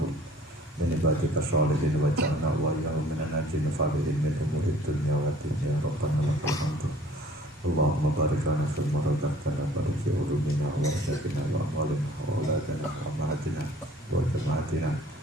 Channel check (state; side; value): normal; both; correlation 0.53